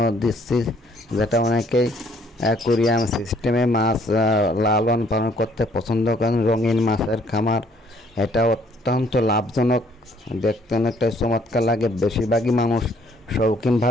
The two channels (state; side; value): normal; both; correlation 0.63